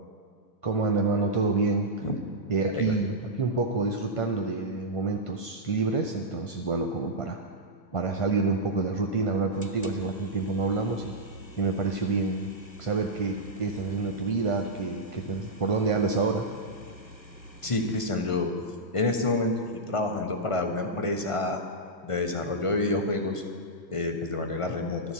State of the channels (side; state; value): right; late; 1.5 ms